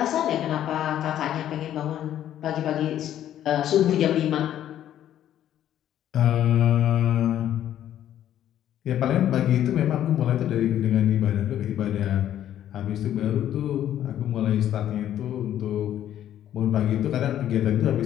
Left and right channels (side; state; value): right; quieter; 11.3 dB